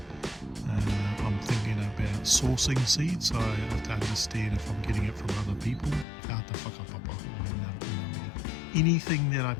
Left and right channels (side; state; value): right; drops out; at 6.1 s